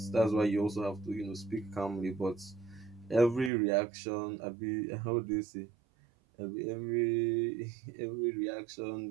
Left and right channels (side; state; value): left; drops out; at 3.5 s